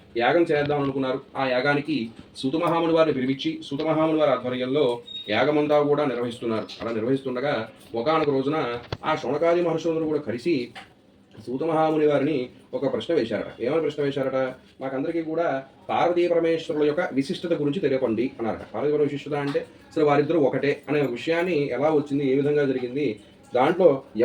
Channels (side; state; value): both; identical; correlation 1.00